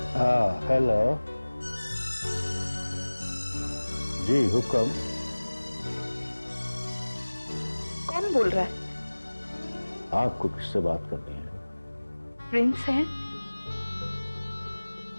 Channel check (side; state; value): both; inverted; correlation -1.00